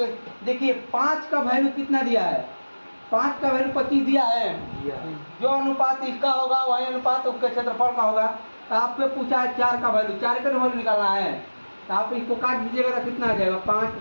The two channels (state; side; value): inverted; both; correlation -1.00